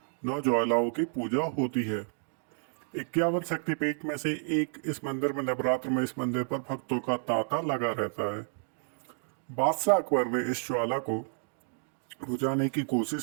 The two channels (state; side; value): silent; left; digital silence